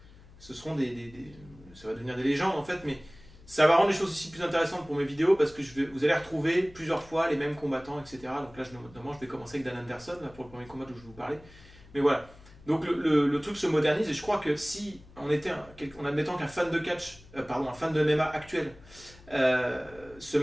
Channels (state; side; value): noise; left; hum, 22 dB below the sound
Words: ça va devenir des légendes en fait, mais ça va rendre les choses ici plus intéressantes pour mes vidéos parce que vous allez retrouver plusieurs fois les mêmes combattants, etc. Donc là, notamment, je vais commencer avec Dan Anderson là, pour le premier combat dont je vais vous parler. Mais voilà. Donc le truc se modernise et je crois que si on était, en admettant qu'un fan de catch, un fan de MMA actuel, se